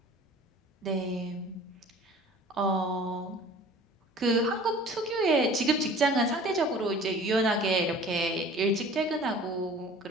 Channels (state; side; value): normal; both; correlation 0.46